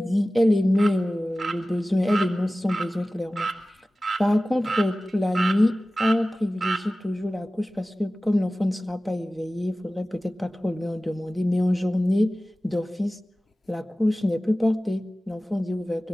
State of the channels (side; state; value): both; normal; correlation 0.96